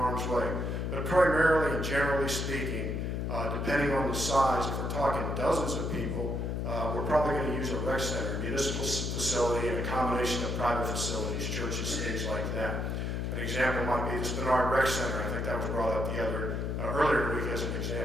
way. But primarily and generally speaking, depending on the size, if we're talking dozens of people, we're probably going to use a rec center, municipal facility, and a combination of private facilities, churches, things like that. An example might be the Spinard Rec Center. I think that was brought up earlier week as an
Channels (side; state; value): left; noise; hum, 1 dB below the sound